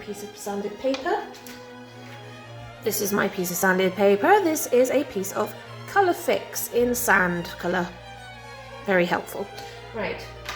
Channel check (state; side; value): identical; both; correlation 1.00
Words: of sanded paper. This is my piece of sanded paper. This is a piece of colour fix in sand colour. Very helpful. Right,